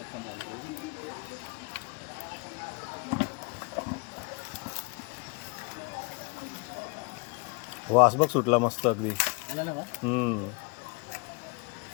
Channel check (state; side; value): quieter; right; 30.5 dB